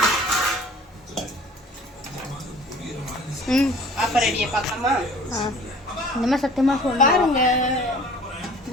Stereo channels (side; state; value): both; normal; correlation 0.48